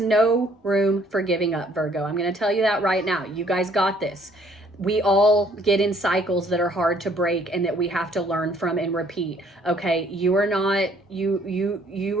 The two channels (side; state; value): both; normal; correlation 0.62